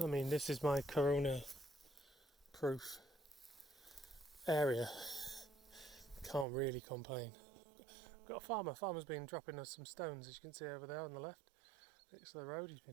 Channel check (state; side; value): drops out; left; at 6.5 s